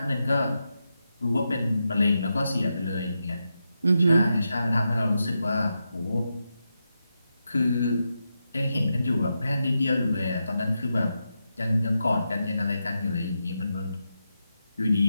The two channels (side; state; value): both; inverted; correlation -0.87